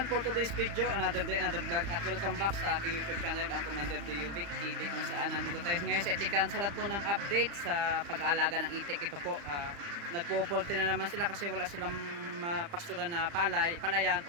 for today's video, another day, another vlog, at welcome back sa aking YouTube channel, ang Commander Diovic TV, kung saan nandito tayo ngayon sa Itikan sa lahat po ng update sa pag-aalaga ng itik. Ito po, nagpo-poultry na naman sila kasi wala silang pastulan na palayan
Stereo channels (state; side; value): late; left; 35 ms